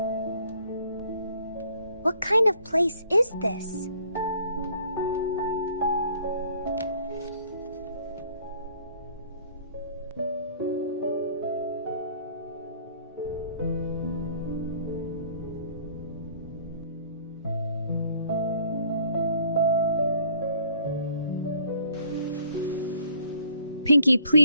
What kind of place is this? Pinky,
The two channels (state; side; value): inverted; both; correlation -0.59